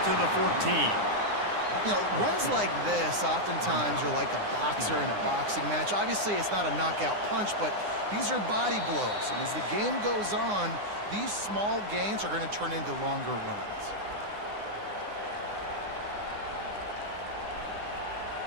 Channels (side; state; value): left; late; 9.8 ms